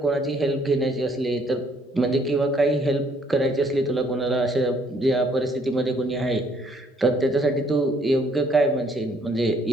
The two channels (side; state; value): both; normal; correlation 0.65